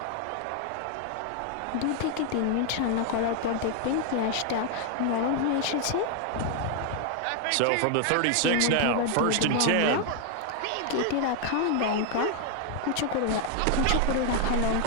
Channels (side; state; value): both; different; correlation 0.00